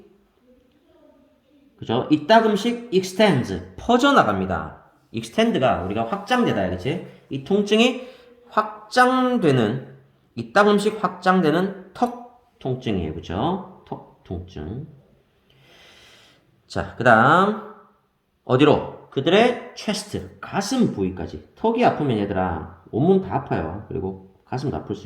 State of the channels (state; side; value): identical; both; correlation 1.00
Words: 그죠? 이따금씩 extends 퍼져나갑니다. extend가 우리가 확장되다, 그치? 이 통증이 확장되는 이따금씩 확장되는 턱 통증이에요. 그죠? 턱 통증. 자, 그 다음 어디로? 그들의 chest, 가슴 부위까지. 턱이 아프면 얘들아 온몸 다 아파요. 그리고 가슴도 아플